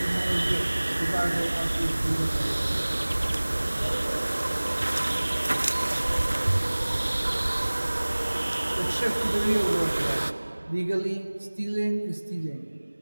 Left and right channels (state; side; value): inverted; both; correlation -1.00